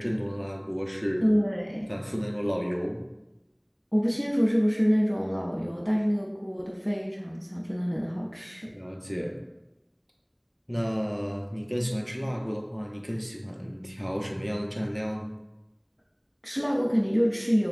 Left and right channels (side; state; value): both; identical; correlation 1.00